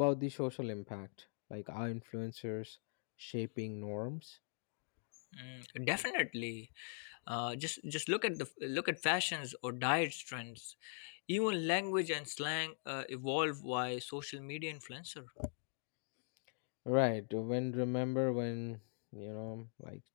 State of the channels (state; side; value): silent; right; digital silence